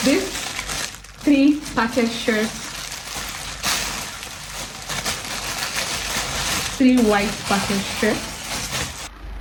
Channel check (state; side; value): identical; both; correlation 1.00